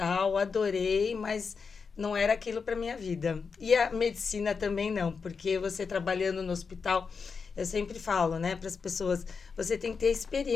adorei, mas não era aquilo para minha vida. E a medicina também não, porque você trabalhando no hospital... Eu sempre falo, né, para as pessoas, você tem que ter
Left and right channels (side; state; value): right; quieter; 5.4 dB